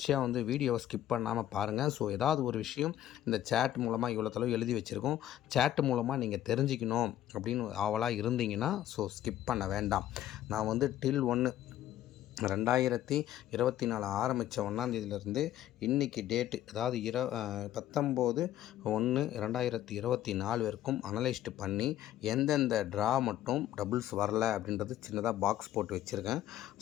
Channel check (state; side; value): quieter; right; 12.5 dB